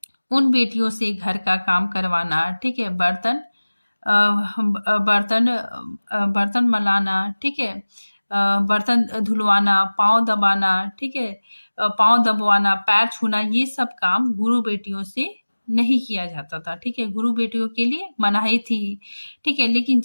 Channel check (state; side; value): inverted; both; correlation -1.00